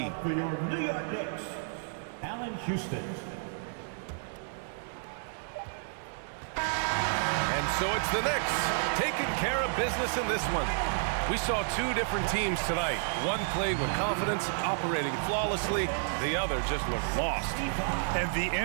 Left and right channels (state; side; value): silent; left; 57 dB below the other